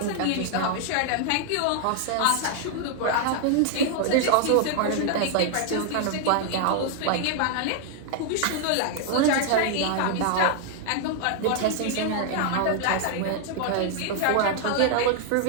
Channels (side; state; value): both; different; correlation 0.00